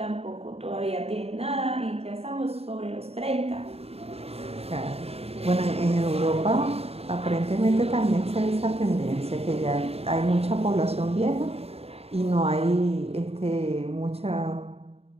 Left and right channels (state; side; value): late; left; 0.29 ms